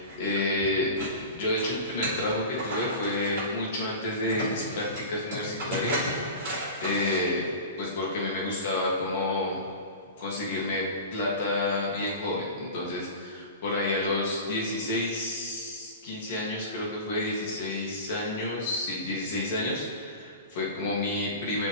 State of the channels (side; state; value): both; inverted; correlation -0.32